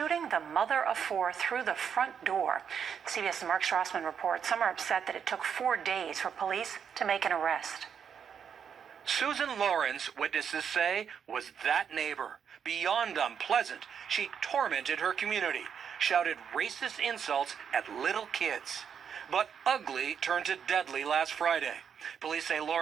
the mother of 4 through the front door. CBS's Mark Strassman reports some are upset that it took 4 days for police to make an arrest. Susan Lawrence, witnesses say, was that neighbor. Beyond unpleasant, she tormented her community, shouted racist insults at little kids. But ugly turned to deadly last Friday. Police say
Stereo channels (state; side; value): quieter; left; 7.5 dB